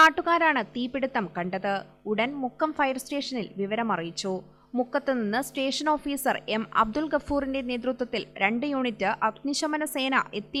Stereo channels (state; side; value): identical; both; correlation 1.00